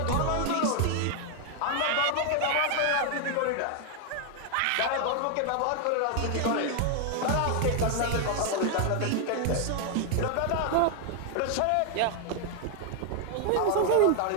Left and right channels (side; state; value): both; different; correlation 0.00